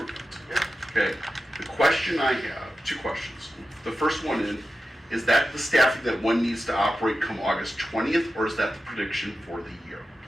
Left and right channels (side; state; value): both; normal; correlation 0.92